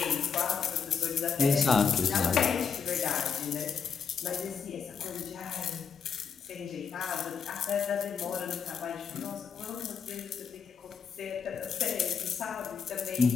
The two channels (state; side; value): quieter; right; 6.4 dB